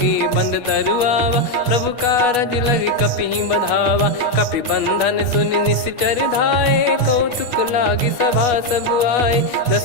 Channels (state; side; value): late; right; 8.3 ms